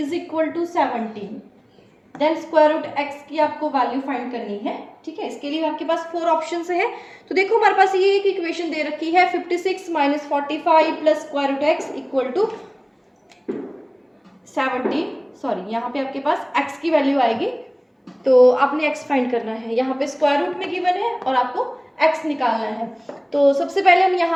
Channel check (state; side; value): identical; both; correlation 1.00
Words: equal to 17, then square root X की आपको value find करनी है। ठीक है, इसके लिए आपके पास 4 ऑप्शन है। तो देखो हमारे पास ये एक इक्वेशन दे रखी है 56 minus 45 plus square root x equal to 17। Sorry, यहाँ पे आपके पास x की वैल्यू आएगी, तो आपने x फाइंड करना है। यहाँ पे स्क्वायर रूट में गिवन है और आपको x निकालना है। तो सबसे पहले हम